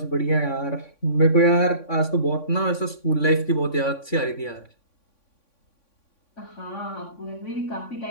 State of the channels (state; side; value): late; right; 3.6 ms